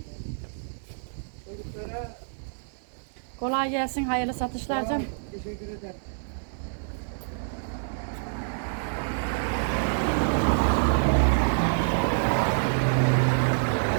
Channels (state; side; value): silent; left; digital silence